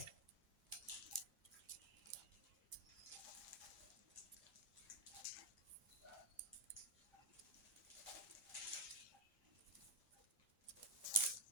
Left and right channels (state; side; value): normal; both; correlation 0.05